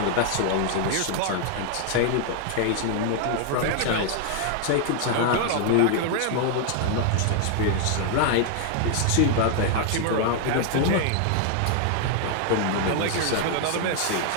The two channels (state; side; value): different; both; correlation 0.00